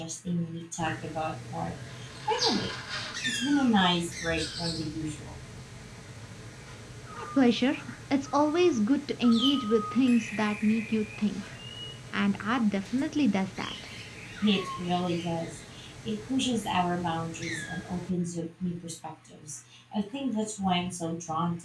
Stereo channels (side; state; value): both; identical; correlation 1.00